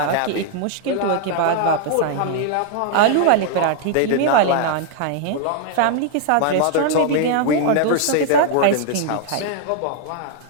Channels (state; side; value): different; both; correlation -0.01